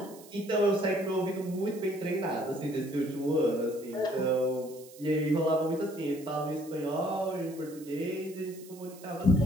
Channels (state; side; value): noise; right; hiss, 20 dB below the sound